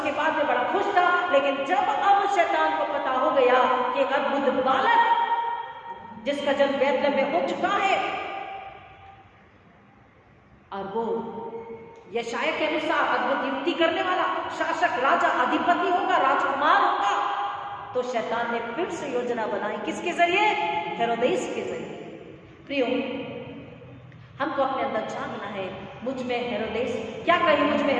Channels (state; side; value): identical; both; correlation 1.00